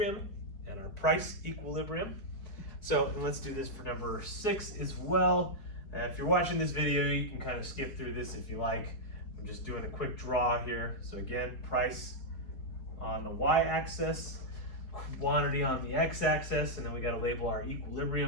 and our price equilibrium. So and let's do this for number 6 as well. If you're watching this video, you can kind of skip through this if you like. I'm just doing a quick draw here. So again, price on the y-axis, quantity on the x-axis, and then we got to label our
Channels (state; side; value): late; right; 4.7 ms